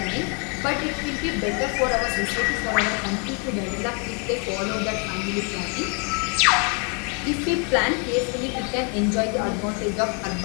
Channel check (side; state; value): right; quieter; 36.6 dB